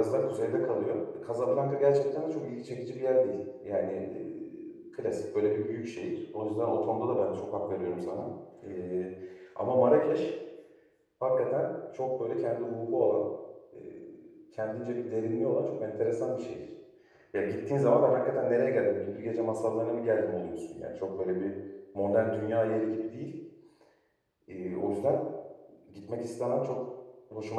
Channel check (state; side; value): identical; both; correlation 1.00